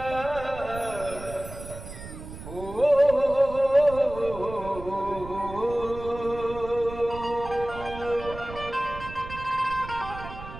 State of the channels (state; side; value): noise; right; rumble, 12 dB below the sound